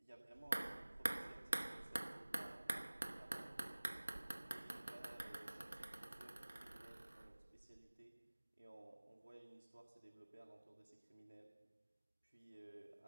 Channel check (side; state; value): both; inverted; correlation -1.00